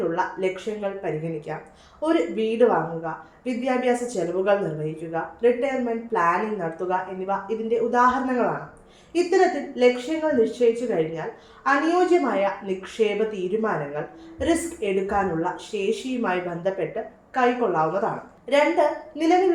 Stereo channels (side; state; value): both; identical; correlation 1.00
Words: ലക്ഷ്യങ്ങൾ പരിഗണിക്കാം. ഒരു വീട് വാങ്ങുക, വിദ്യാഭ്യാസ ചെലവുകൾ നിർവഹിക്കുക, റിട്ടയർമെന്റ് പ്ലാനിംഗ് നടത്തുക എന്നിവ ഇതിന്റെ ഉദാഹരണങ്ങളാണ്. ഇത്തരത്തിൽ ലക്ഷ്യങ്ങൾ നിശ്ചയിച്ചു കഴിഞ്ഞാൽ അനുയോജ്യമായ നിക്ഷേപ തീരുമാനങ്ങൾ റിസ്ക് എടുക്കാനുള്ള ശേഷിയുമായി ബന്ധപ്പെട്ട് കൈക്കൊള്ളാവുന്നതാണ്. 2,